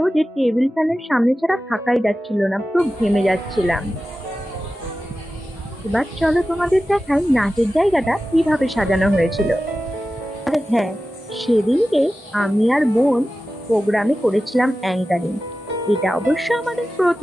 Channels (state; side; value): normal; both; correlation 0.94